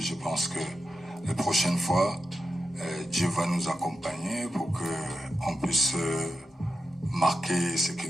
pense que les prochaines fois, Dieu va nous accompagner pour qu'on puisse marquer ce qui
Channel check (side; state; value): both; normal; correlation 0.88